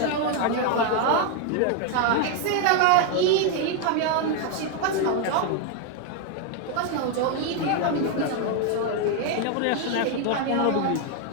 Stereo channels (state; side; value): different; both; correlation 0.01